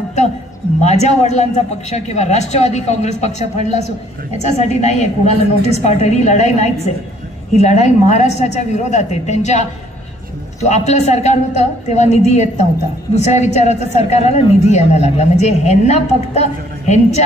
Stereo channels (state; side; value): normal; both; correlation 0.62